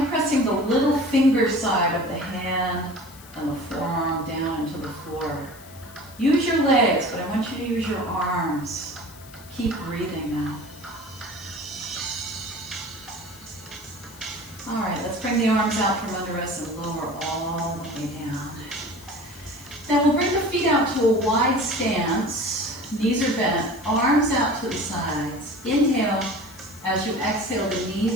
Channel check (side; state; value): left; noise; hiss, 20 dB below the sound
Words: of pressing the little finger side of the hand and the forearm down into the floor. Use your legs, but I want you to use your arms. Keep breathing now. All right, let's bring the arms out from under us and lower all the way down. Then we'll bring the feet out to a wide stance. Knees are bent, arms out to the sides. Inhale. As you exhale, the